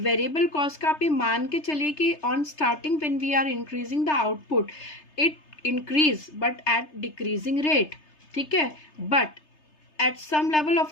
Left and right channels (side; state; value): right; late; 3.3 ms